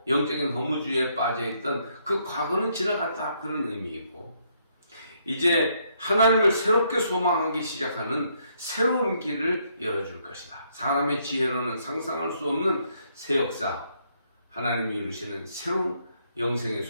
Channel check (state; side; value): inverted; both; correlation -0.72